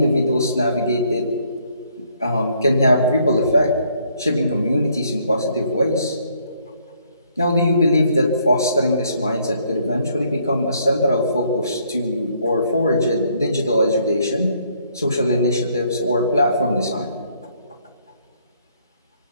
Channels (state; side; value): inverted; both; correlation -0.67